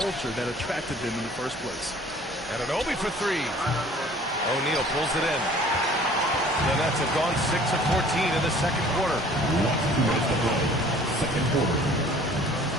that attracted them in the first place? Anunoby for three. O'Neal pulls it in. The Nets have gone 6 of 14 in the second quarter. Second quarter.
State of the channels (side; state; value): both; normal; correlation 0.51